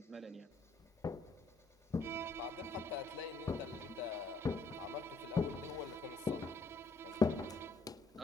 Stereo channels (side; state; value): right; quieter; 3.4 dB